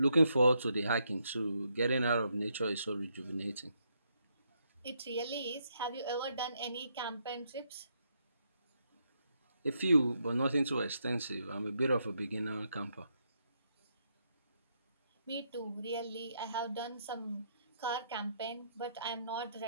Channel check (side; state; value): both; inverted; correlation -0.77